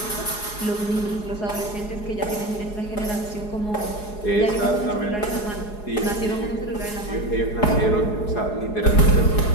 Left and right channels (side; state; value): right; late; 4.8 ms